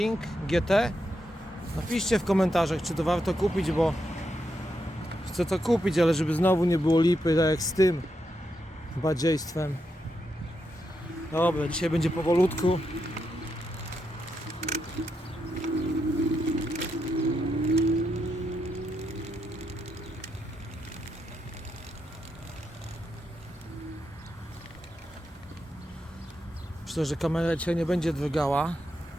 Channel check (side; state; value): both; normal; correlation 0.83